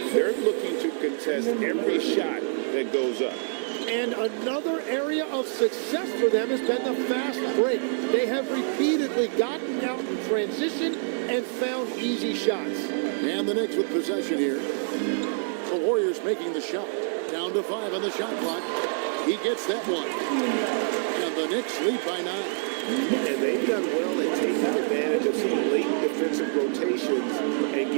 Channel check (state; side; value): silent; left; 61 dB below the other